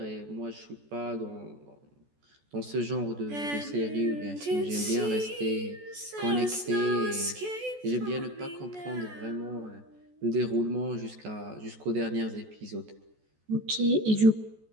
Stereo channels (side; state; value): left; late; 14 ms